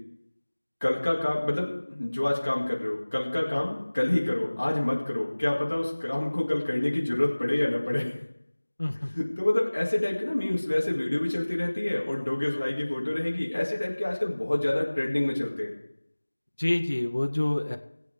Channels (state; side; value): inverted; both; correlation -1.00